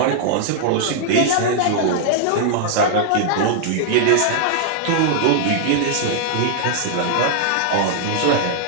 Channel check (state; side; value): different; both; correlation -0.01